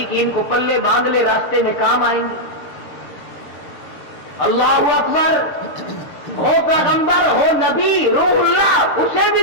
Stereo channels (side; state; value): right; late; 6.7 ms